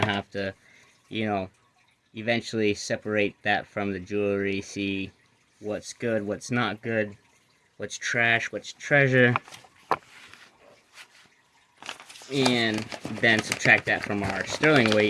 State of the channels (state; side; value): identical; both; correlation 1.00